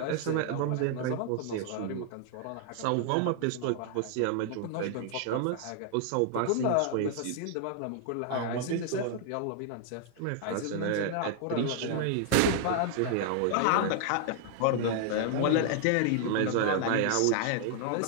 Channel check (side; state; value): both; different; correlation 0.00